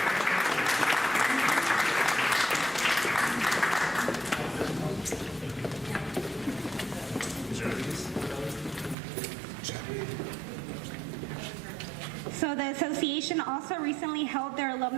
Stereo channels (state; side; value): drops out; left; at 9.0 s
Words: So the association also recently held their